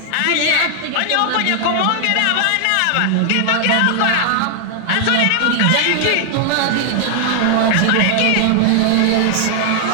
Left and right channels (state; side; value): different; both; correlation 0.00